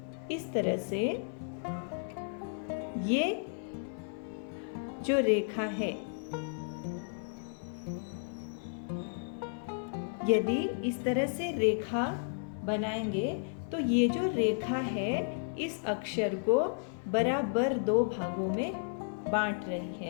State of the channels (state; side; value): silent; right; 56 dB below the other